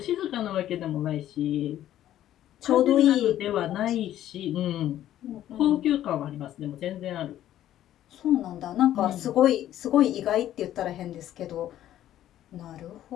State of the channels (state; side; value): quieter; right; 12.4 dB